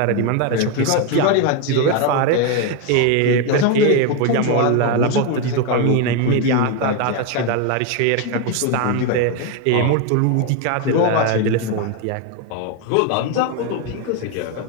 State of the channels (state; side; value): different; both; correlation 0.02